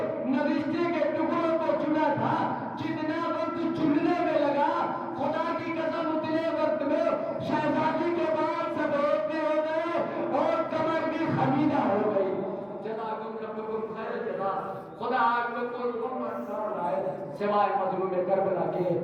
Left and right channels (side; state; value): both; identical; correlation 1.00